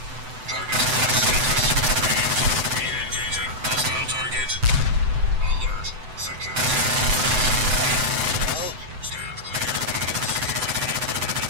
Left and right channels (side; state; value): left; late; 7.8 ms